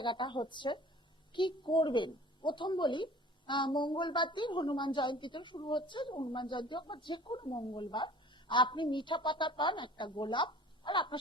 হচ্ছে কি করবেন। প্রথম বলি, মঙ্গলবার দিন হনুমান জয়ন্তীতে শুরু হচ্ছে, হনুমান জয়ন্তী হোক বা যে কোনো মঙ্গলবার, আপনি মিঠা পাতা পান, একটা গোলাপ, আর আপনার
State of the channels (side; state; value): both; normal; correlation 0.47